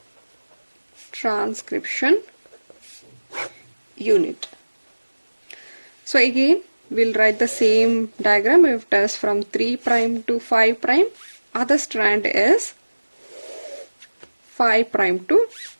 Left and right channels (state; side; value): inverted; both; correlation -1.00